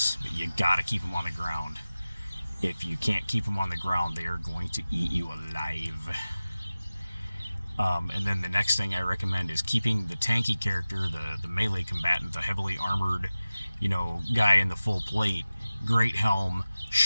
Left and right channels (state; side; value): inverted; both; correlation -0.96